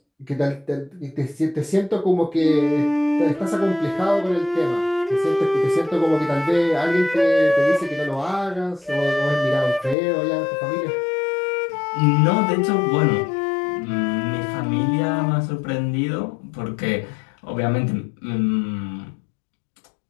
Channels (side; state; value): right; drops out; at 10.0 s